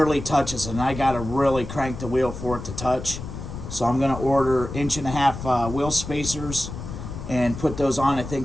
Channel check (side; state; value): left; noise; rumble, 9 dB below the sound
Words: touches, and I gotta really crank the wheel for it to touch. So I'm gonna order 1.5 inch wheel spacers and put those on. I